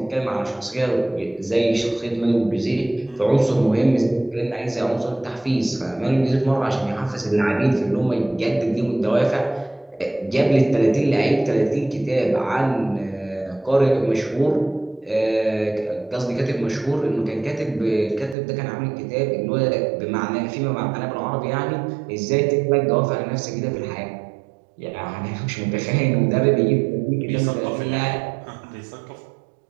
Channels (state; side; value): drops out; left; at 18.4 s